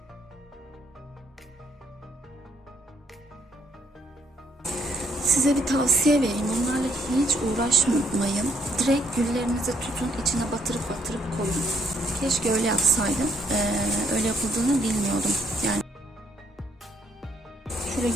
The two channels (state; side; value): normal; both; correlation 0.69